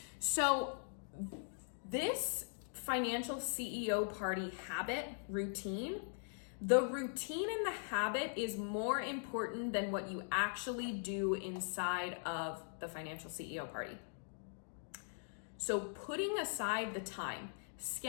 so this financial CEO party habit routine, the routine and the habit is more important than what you actually do inside of the financial CEO party. So putting aside the time,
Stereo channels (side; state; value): right; silent; digital silence